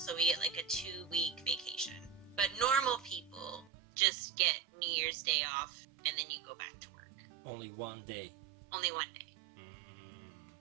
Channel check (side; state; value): left; drops out; at 3.7 s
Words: we get like a 2-week vacation. But normal people just get New Year's Day off and then you go back to work. Only one day. Only one day.